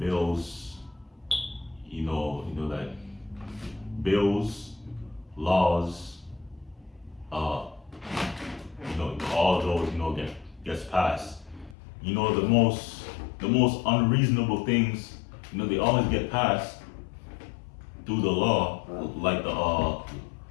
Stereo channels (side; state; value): right; drops out; at 11.8 s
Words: you know, like bills, laws, you know, all those, you know, gets passed. You know, the most unreasonable things, you know, they always get passed through the law, like